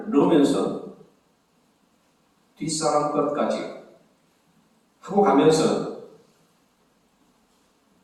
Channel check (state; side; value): identical; both; correlation 1.00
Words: 넣으면서 뒷사람 것까지 하고 가면서